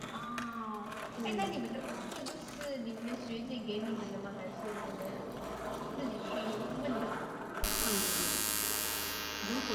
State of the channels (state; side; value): identical; both; correlation 1.00